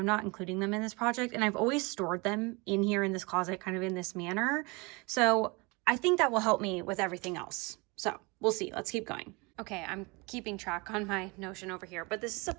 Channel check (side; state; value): left; quieter; 27.4 dB